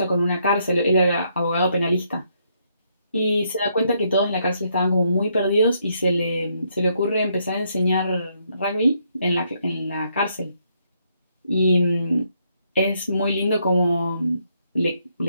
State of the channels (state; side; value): inverted; both; correlation -0.74